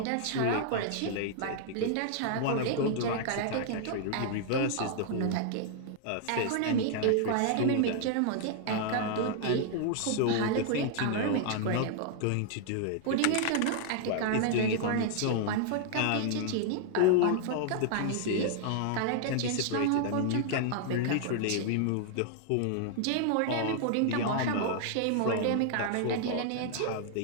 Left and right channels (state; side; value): different; both; correlation 0.00